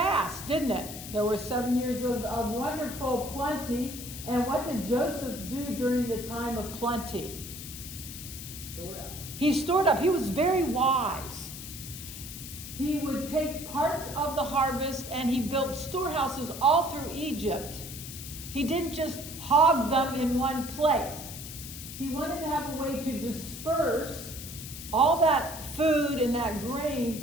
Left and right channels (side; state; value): left; noise; hiss, 10 dB below the sound